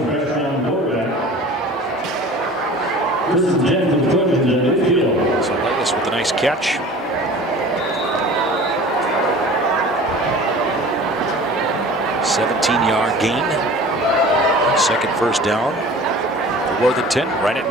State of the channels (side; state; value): both; normal; correlation 0.42